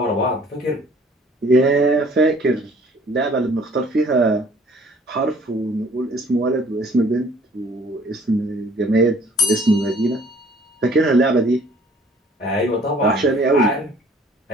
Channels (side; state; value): both; normal; correlation 0.55